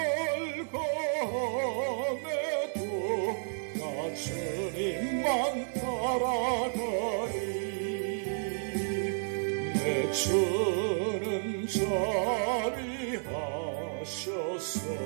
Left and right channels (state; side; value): silent; left; digital silence